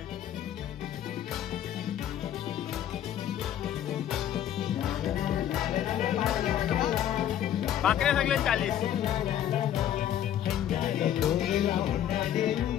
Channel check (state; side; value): quieter; right; 10.9 dB